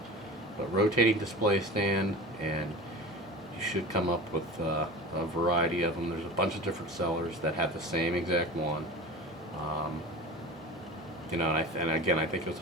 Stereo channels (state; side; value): normal; both; correlation 0.33